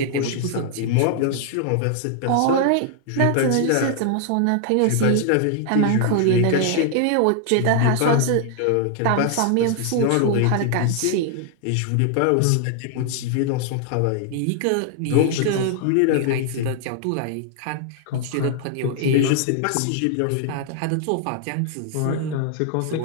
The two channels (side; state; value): both; different; correlation 0.00